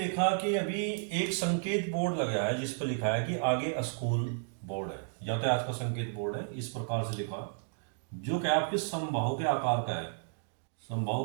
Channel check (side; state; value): left; silent; digital silence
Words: कि अभी एक संकेत बोर्ड लगा है जिस पर लिखा है कि आगे स्कूल बोर्ड है, यातायात का संकेत बोर्ड है। इस प्रकार से लिखा जो कि आपके समबाहु के आकार का है।